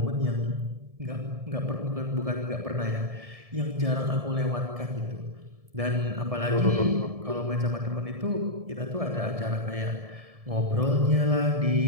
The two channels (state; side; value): late; left; 1.7 ms